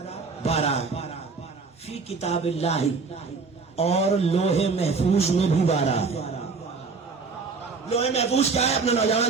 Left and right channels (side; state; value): left; quieter; 4.6 dB